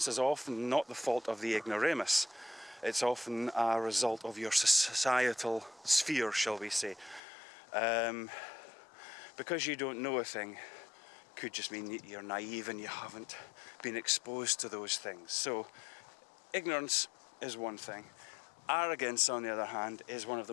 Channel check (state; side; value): drops out; right; at 7.2 s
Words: is often not the fault of the ignoramus. It's often a result of your societal sphere, shall we say. Because you don't know a thing could just mean that you're naive and you haven't been exposed to those things. So ignorance is one thing. Arrogance, on the other hand, is one of the